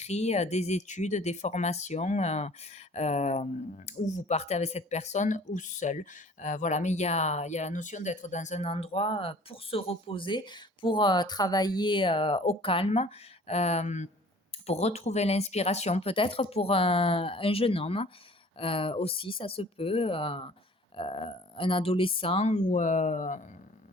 des études, des formations, euh, où vous partez avec cette personne ou seul. Voilà, mais il y a la notion d'être dans un endroit pour se reposer, pour travailler au calme. euh, pour retrouver l'inspiration, peut-être pour un jeune homme aussi, ça se peut, un adolescent ou un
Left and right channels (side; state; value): both; normal; correlation 0.50